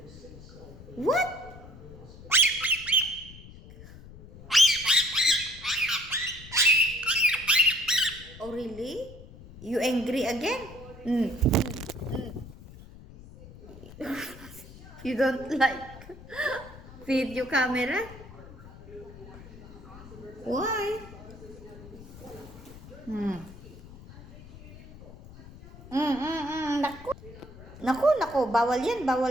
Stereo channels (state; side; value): noise; left; rumble, 17 dB below the sound